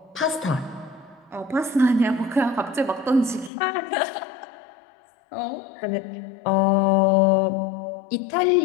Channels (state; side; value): drops out; right; at 3.5 s